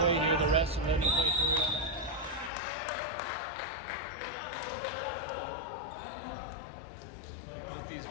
near the rest and then you play through it. Both these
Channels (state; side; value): drops out; right; at 2.5 s